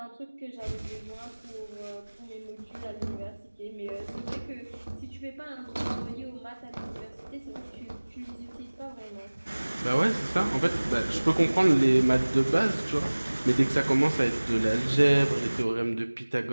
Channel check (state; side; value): inverted; both; correlation -1.00